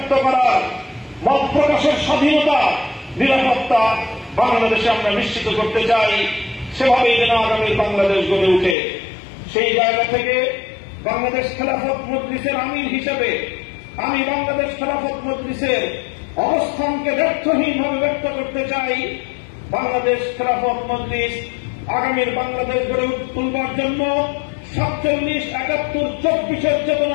করার, মত প্রকাশের স্বাধীনতা, নিরাপত্তা বাংলাদেশে আমরা নিশ্চিত করতে চাই। সেভাবেই যেন আগামী বাংলাদেশ গড়ে উঠে। সেই জায়গা থেকে বাংলাদেশ খেলাফত মজলিসের আমির হিসেবে আমি বাংলাদেশ খেলাফত মজলিসের অবস্থানকে ব্যর্থহীনভাবে ব্যক্ত করতে চাই। বাংলাদেশ খেলাফত মজলিস আগামীর বাংলাদেশ গড়ে তুলবার জন্য 47, 71, 24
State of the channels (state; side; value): drops out; right; at 8.8 s